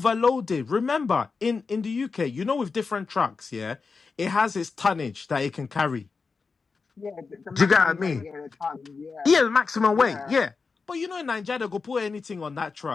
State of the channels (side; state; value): right; quieter; 4.7 dB